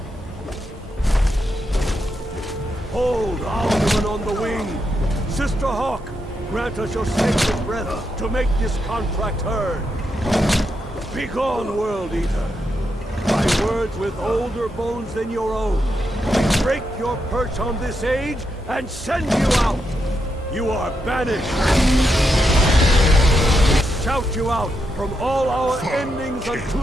Hold Alduin on the wing! Sister Hawk, grant us your sacred breath to make this contract heard. Begone, World Eater! By words with older bones than your own, we break your perch on this age and send you out! You are banished! We shout you out from all our endings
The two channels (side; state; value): both; normal; correlation 0.83